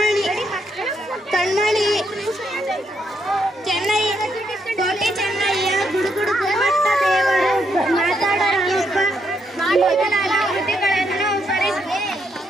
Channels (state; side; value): normal; both; correlation 0.77